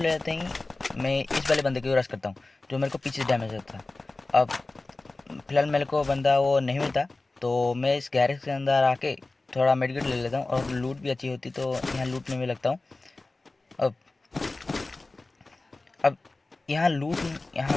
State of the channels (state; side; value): quieter; right; 3.2 dB